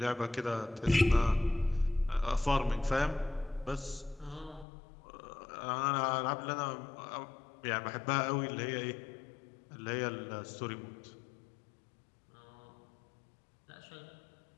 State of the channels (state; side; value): drops out; right; at 4.7 s